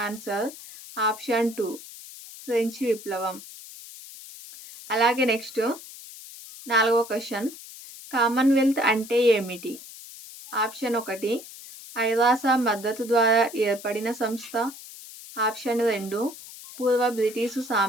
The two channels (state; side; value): noise; left; hiss, 16 dB below the sound